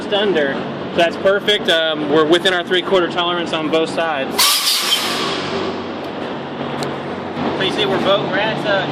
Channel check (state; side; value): identical; both; correlation 1.00